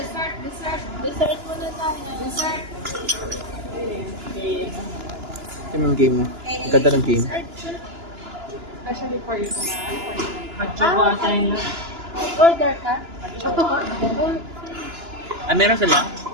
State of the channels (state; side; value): late; left; 2.9 ms